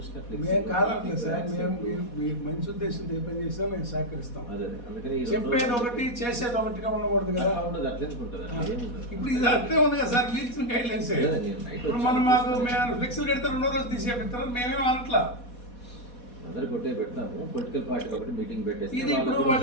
మేము కాదట్లేదు సార్, మేము మీరు మంచి ఉద్దేశంతో ఏ పని చేసినా మేము సహకరిస్తాం. అదే అందుకని చెప్పేది ఒకటి చేసేది ఒకటిగా ఉండకూడదు కదా. అట్లా ఉంటుంది. ఇప్పుడు ఇది అట్లే ఉంది కదా సార్, మీరు ఇచ్చిన గైడ్ లైన్స్. ఇప్పుడు మనం మాకు మేము ఫ్లెక్సీలు కడితే 2వ రోజు తీసేపిస్తారు, మేమేం అనట్లా. అందరు కొట్టే పెడతాము. పొలిటికల్ పార్టీ ఒకటి మీటింగ్ పెట్టేసి ఇది ఇప్పుడు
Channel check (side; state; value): right; late; 4.2 ms